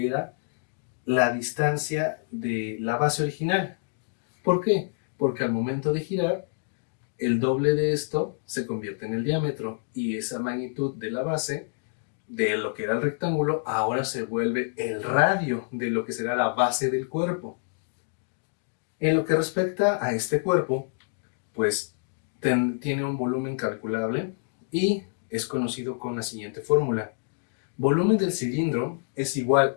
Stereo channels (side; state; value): right; silent; digital silence